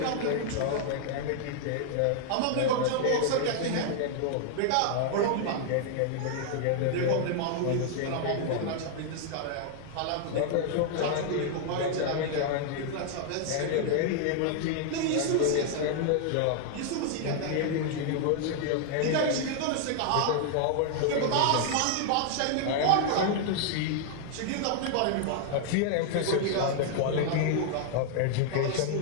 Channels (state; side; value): different; both; correlation 0.00